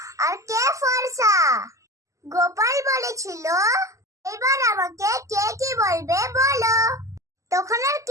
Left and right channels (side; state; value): left; late; 0.16 ms